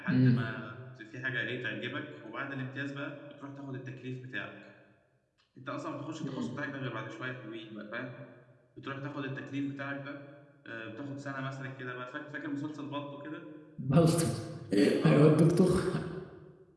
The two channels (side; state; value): both; identical; correlation 1.00